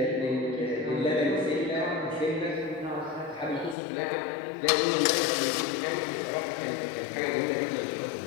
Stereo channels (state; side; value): drops out; right; at 3.8 s